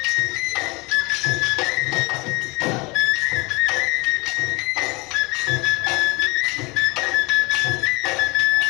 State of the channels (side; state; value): right; quieter; 26.1 dB